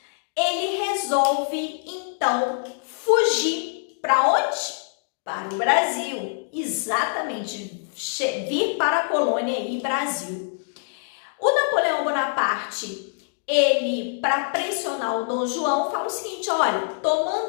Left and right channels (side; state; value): right; silent; digital silence